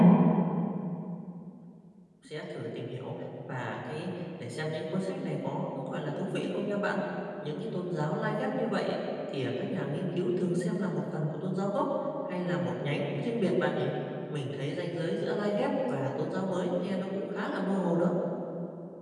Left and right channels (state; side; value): identical; both; correlation 1.00